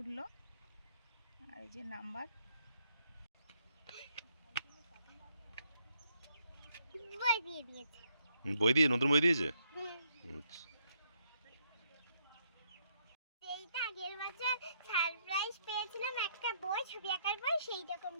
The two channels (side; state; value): both; inverted; correlation -0.72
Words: উঠলো। আর এই যে নাম্বার। বই দিয়ে নতুন বই দিয়েছে। এইটা আগের বছর সারপ্রাইজ পেয়েছিলাম, একটা বই, ছবি আঁকার বই, সেই